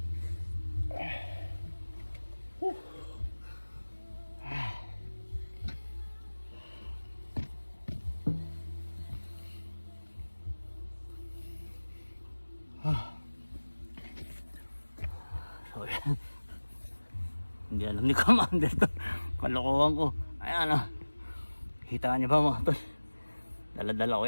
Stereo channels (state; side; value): inverted; both; correlation -1.00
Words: So, yan. Hindi alam ni Commander to. Kalokohan ko. Ayan ah. Kita niyo ba mga tol? Dala-dala ko